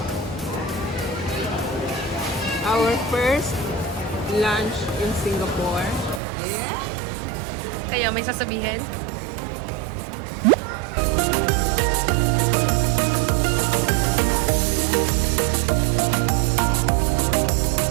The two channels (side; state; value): left; drops out; at 6.2 s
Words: Our first lunch in Singapore. Yeah. Kayo, may sasabihin?